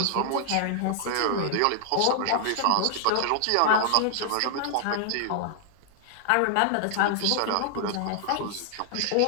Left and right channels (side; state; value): both; different; correlation -0.01